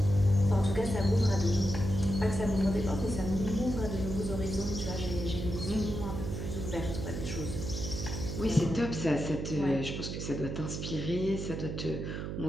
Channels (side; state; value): right; noise; hum, 5 dB below the sound